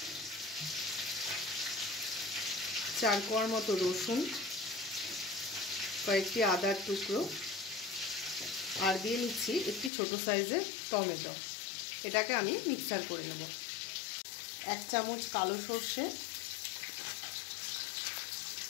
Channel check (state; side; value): drops out; right; at 9.9 s